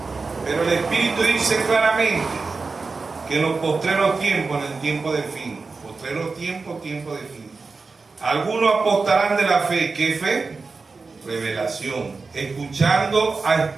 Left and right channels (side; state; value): left; quieter; 4.2 dB